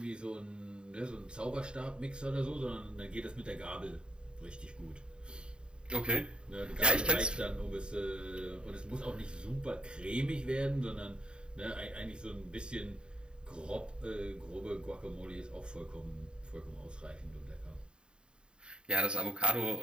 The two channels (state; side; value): late; left; 0.051 ms